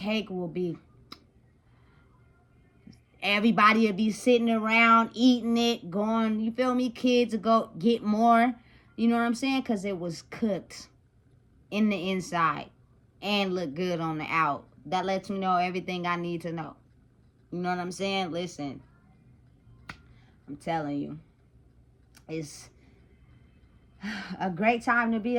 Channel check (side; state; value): both; identical; correlation 1.00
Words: will be everybody would be sitting around eating it, going, you feel me? Kids would go get more. You know what I'm saying? Because it was cooked in the inside and look good on the out. That lets me know everything I need to know. You know what I'm saying? Listen, I'm telling you, it's a great time to be